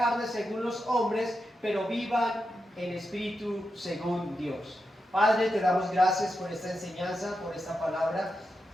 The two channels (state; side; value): normal; both; correlation 0.88